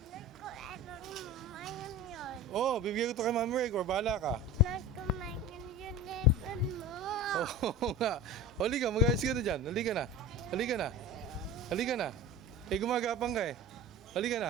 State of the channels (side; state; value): both; normal; correlation 0.33